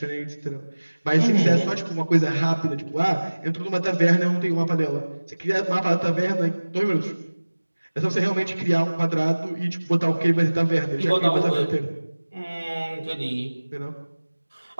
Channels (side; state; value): both; inverted; correlation -1.00